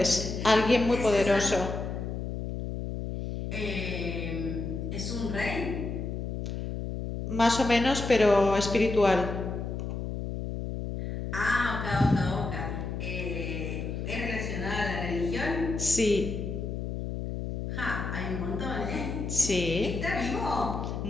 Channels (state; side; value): noise; left; hum, 4 dB below the sound